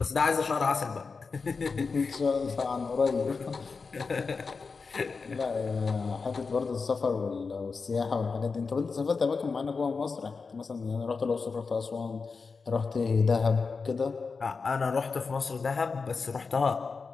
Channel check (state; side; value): quieter; right; 4.7 dB